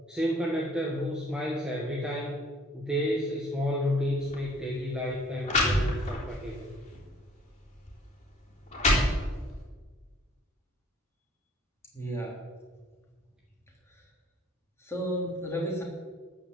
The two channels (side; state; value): both; normal; correlation 0.57